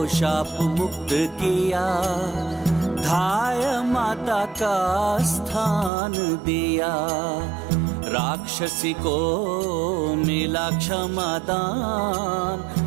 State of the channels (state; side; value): drops out; left; at 5.9 s